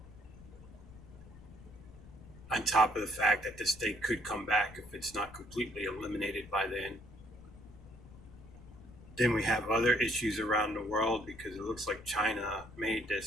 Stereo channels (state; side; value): noise; left; rumble, 19 dB below the sound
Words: On top of the fact that this thing could come back if it's not completely eliminated by then. Then we have other issues around the world because it looks like China made